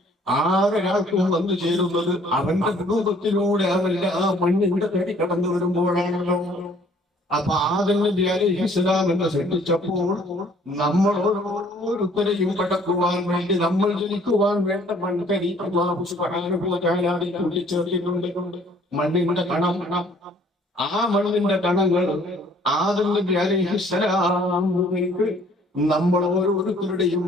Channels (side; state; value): both; normal; correlation 0.58